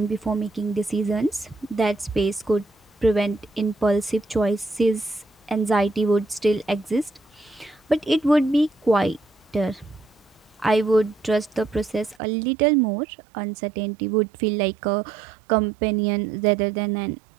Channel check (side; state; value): left; drops out; at 12.2 s